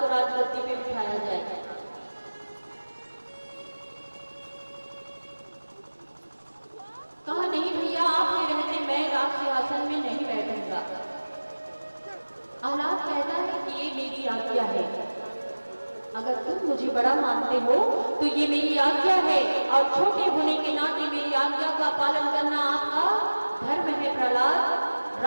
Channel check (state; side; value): inverted; both; correlation -1.00